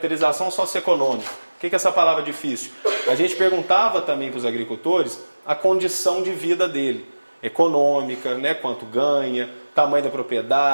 socioeconômica. O que é essa palavra difícil? A gente perguntava também para os agricultores a condição de vida dele. Econômica, né? Quanto ganha, tamanho da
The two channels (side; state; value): both; inverted; correlation -1.00